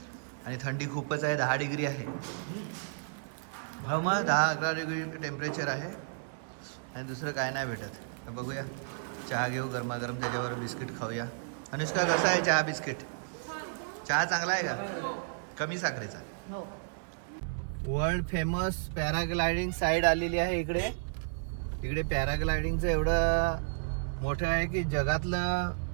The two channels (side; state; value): left; silent; 56 dB below the other